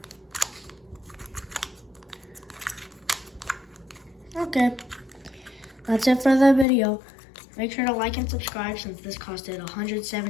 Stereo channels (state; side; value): drops out; right; at 6.7 s